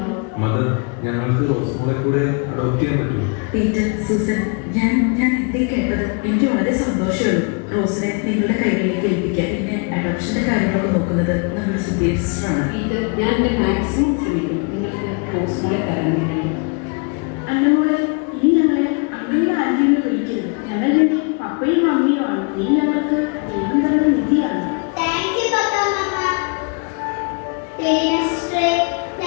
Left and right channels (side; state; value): right; quieter; 35.4 dB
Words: മദർ, ഞങ്ങൾക്ക് റോസ്മോളെ കൂടെ അഡോപ്റ്റ് ചെയ്യാൻ പറ്റുമോ? പീറ്റർ, സൂസൻ, ഞാൻ എന്തേ കേട്ടത്? എനിക്ക് വളരെ സന്തോഷമുള്ളൂ. റോസിനെ നിങ്ങളുടെ കൈകളിലേക്ക് ഏൽപ്പിക്കാൻ. പിന്നെ അഡോപ്ഷന്റെ കാര്യങ്ങളൊക്കെ നോക്കുന്നത് നമ്മുടെ സുധീർ സിസ്റ്ററാണ്. ഇത് ഞാൻ എൻ്റെ മാക്സിമം ശ്രമിക്കും നിങ്ങൾക്ക് റോസ്മോളെ തരാൻ വേണ്ടി. അന്നമോളെ, ഇനി ഞങ്ങളെ അമ്മയുടെ ആന്റിയെ വിളിക്കരുത്. ഞങ്ങളുടെ പപ്പയും അമ്മയും ആണ്. നീ ഞങ്ങൾക്ക് ദൈവം തന്ന നിധിയാണ്. താങ്ക് യു പപ്പ, മമ്മ. സിസ്റ്ററെ,